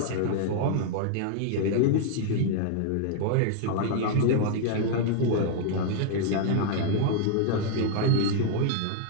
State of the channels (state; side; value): different; both; correlation 0.00